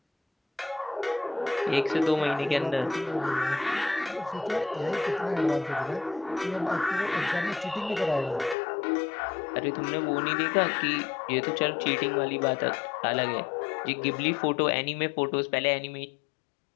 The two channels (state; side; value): drops out; right; at 8.6 s